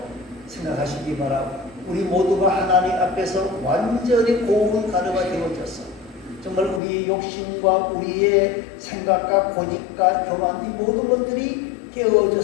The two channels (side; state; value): right; drops out; at 6.8 s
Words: 생각하시기 바라고, 우리 모두가 하나님 앞에서 완전히 고운 가루가 되어져서 정말 우리의 욕심과 우리의 생각과 고집과 교만, 이 모든 것들이